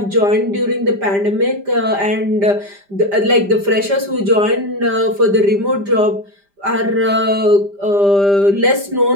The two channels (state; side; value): late; left; 5.0 ms